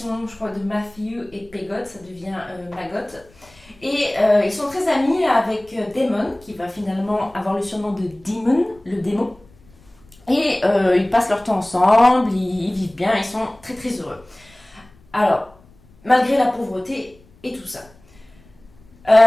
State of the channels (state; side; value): noise; left; rumble, 28 dB below the sound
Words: je crois, de Matthew et Pegott, ça devient Maggot. Et ils sont très amis avec Damon, qui va finalement avoir le surnom de Demon, le démon. Et ils passent leur temps ensemble, ils vivent bien, ils sont très très heureux. Alors, malgré la pauvreté et tout ça,